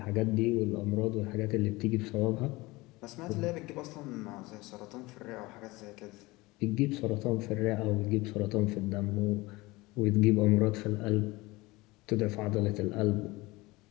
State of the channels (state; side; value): quieter; right; 21.7 dB